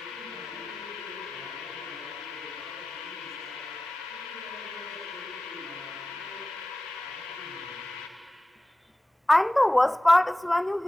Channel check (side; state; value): both; normal; correlation 0.95